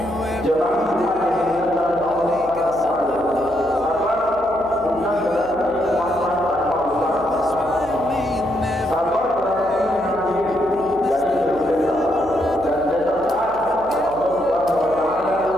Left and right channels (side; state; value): right; noise; hum, 19 dB below the sound